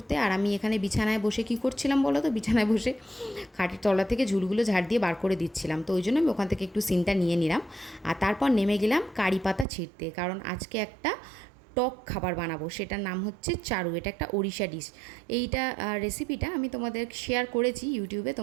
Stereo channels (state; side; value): drops out; left; at 9.7 s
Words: আর আমি এখানে বিছানায় বসে কী করছিলাম বলো তো, বিছানায় বসে খাটের তলা থেকে ঝুলগুলো ঝাড় দিয়ে বার করে দিচ্ছিলাম। তো ওই জন্য আমি ওখান থেকে একটু সিনটা নিয়ে নিলাম। আর তারপর নেমে গেলাম কারি পাতা ছিঁড়তে, কারণ আজকে একটা টক খাবার বানাবো, সেটার নাম হচ্ছে চারু। এটা একটা ওড়িশা ডিশ। এইটা রেসিপিটা আমি তোমাদের শেয়ার করেছি ইউটিউবে,